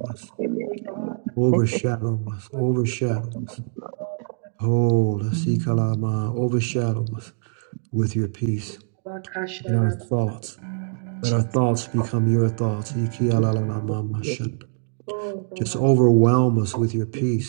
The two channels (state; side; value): silent; left; digital silence